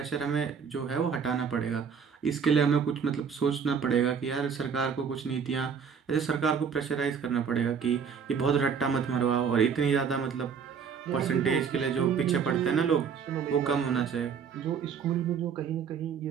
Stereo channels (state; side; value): quieter; left; 6.6 dB